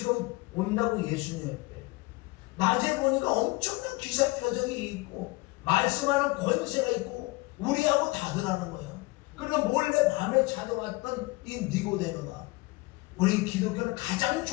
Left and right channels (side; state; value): right; quieter; 23.2 dB